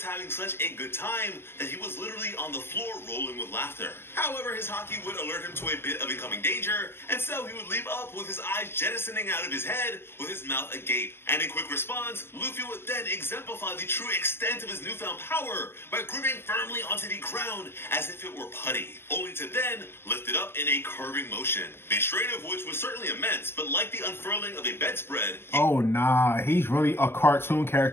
having such a good time that he was literally on the floor rolling with laughter. However, his haki would alert him to a bit of incoming danger, and so he would leap up with his eyes jettisoning out of his head with his mouth agape. And in quick response, Luffy would then exemplify the true extent of his newfound power by gripping firmly onto the ground as if it were putty, only to then lift it up in a curving motion. The strain of which was certainly immense, but like the unfurling of a bedspread... Oh, nah. He's really a cartoon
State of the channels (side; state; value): right; late; 0.11 ms